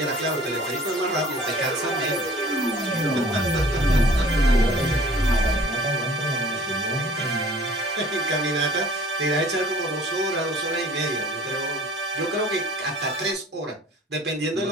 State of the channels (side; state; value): both; normal; correlation 0.49